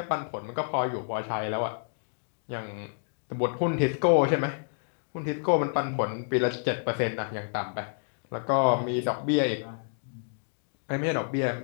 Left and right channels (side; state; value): right; silent; digital silence